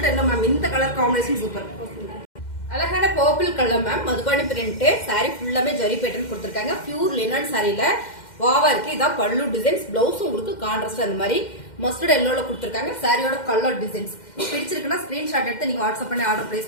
yellow ma'am. இந்த கலர் காம்பினேஷன் சூப்பர். அழகான purple colour ma'am. Madhubani print. Sorry ஃபுல்லாமே ஜரி பேட்டர்ன் கொடுத்திருக்காங்க. பியூர் லினன் சாரியில வாவா இருக்கு. இதான் பல்லு டிசைன்ஸ். பிளவுஸ் உங்களுக்கு கான்ட்ராஸ்ட் அந்த மாதிரி மஸ்டர்ட் எல்லோல கொடுத்திருக்காங்க. சாரியோட கலர் டிசைன்ஸ் பிடிச்சிருக்குன்னா ஸ்கிரீன்ஷாட் எடுத்து நீங்க வாட்ஸ்அப் பண்ணி ஆர்டர்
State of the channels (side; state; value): right; late; 2.1 ms